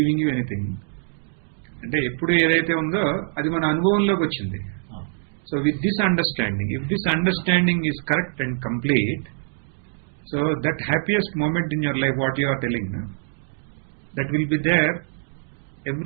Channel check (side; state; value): left; silent; digital silence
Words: you anything. అంటే ఎప్పుడు ఏదైతే ఉందో అది మన అనుభవంలోకి వచ్చింది. So with this understanding, if this understanding is correct and complete, so that happiest moment in your life, what you are telling, that will be there